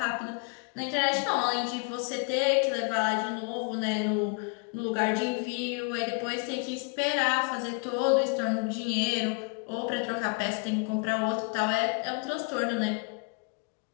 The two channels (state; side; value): quieter; right; 33.4 dB